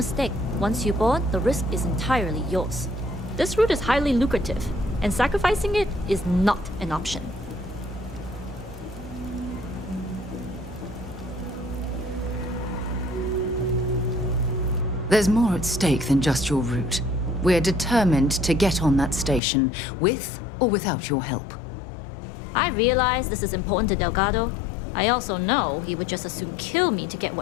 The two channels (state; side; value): drops out; right; at 19.4 s